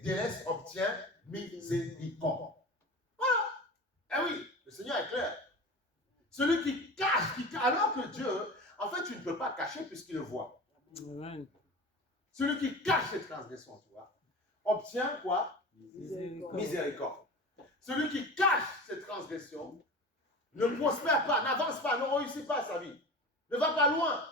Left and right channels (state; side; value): normal; both; correlation 0.33